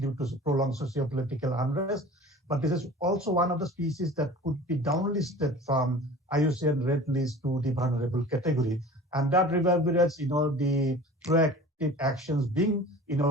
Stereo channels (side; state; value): both; normal; correlation 0.41